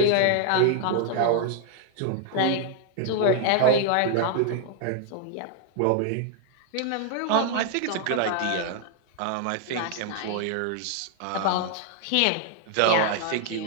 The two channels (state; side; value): different; both; correlation 0.00